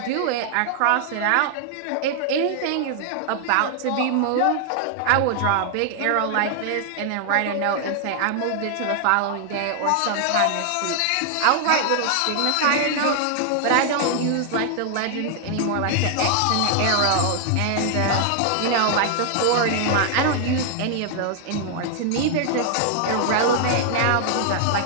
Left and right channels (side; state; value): both; different; correlation 0.00